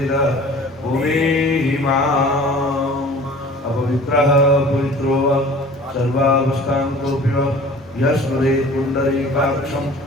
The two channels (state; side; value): normal; both; correlation 0.45